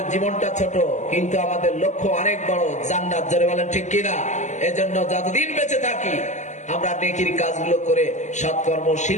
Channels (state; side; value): late; right; 0.34 ms